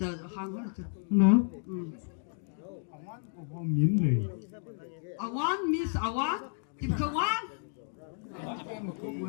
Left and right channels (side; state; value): right; silent; 56 dB below the other